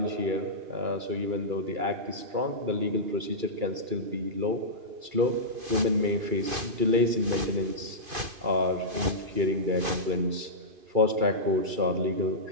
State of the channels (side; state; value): left; late; 2.5 ms